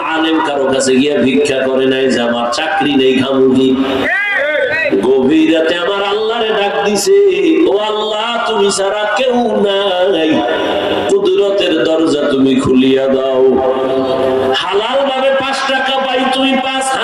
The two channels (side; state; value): both; identical; correlation 1.00